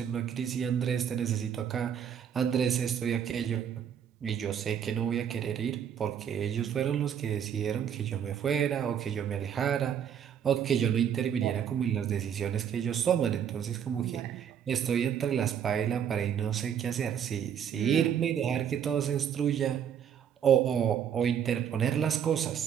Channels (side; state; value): left; quieter; 8.6 dB